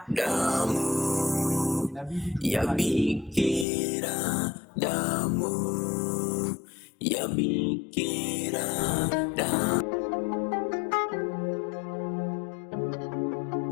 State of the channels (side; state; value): right; drops out; at 3.7 s